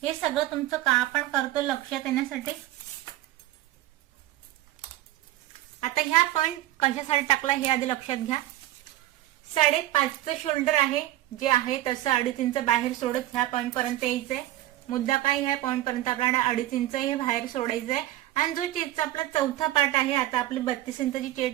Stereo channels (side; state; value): left; quieter; 15.2 dB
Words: हे सगळं तुमचं का आपण करतो लक्षात येण्यासाठी. आता ह्या पॉइंट कशासाठी टाकला हे आधी लक्षात घ्या. 5.5चं शोल्डर आहे जे आहे तसं 2.5 इंच बाहेर सोडत ह्या पॉइंट पर्यंत यायचंय. मुद्दा काय, ह्या पॉइंट पर्यंत आपल्याला 2.5 इंच हे बाहेर सोडायचंय. आणि जो चेस्टचा आपला चौथा पार्ट आहे, आता आपली 32 इंचाची